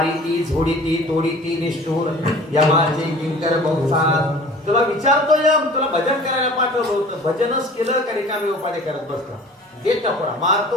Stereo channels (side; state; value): both; normal; correlation 0.45